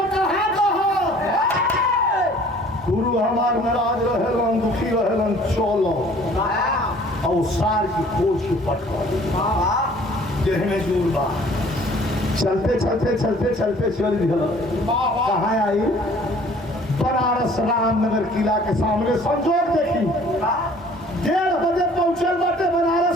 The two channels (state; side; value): normal; both; correlation 0.53